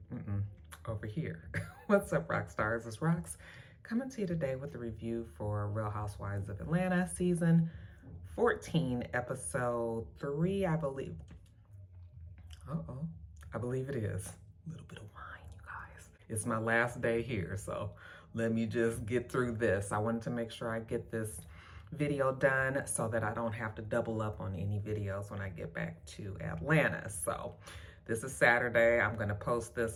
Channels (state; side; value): identical; both; correlation 1.00